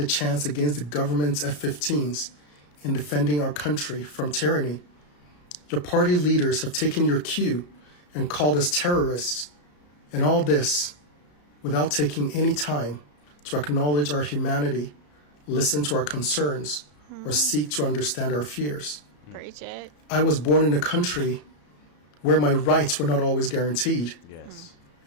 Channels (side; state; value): right; late; 34 ms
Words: a chance against the government's F-15s in defending our country from tyranny. Your party leaders have taken your cue and called us terrorists, and all this without taking any time to acknowledge our humanity, listen to our concerns, or seek to understand our fears. Preach it. I was born in a country where my rights were not always guaranteed. Yes.